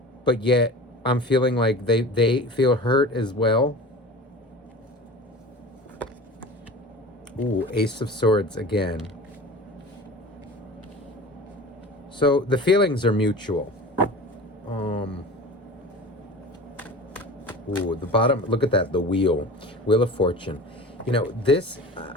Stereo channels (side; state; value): both; normal; correlation 0.37